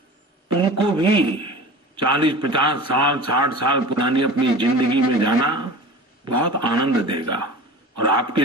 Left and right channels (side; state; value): both; normal; correlation 0.36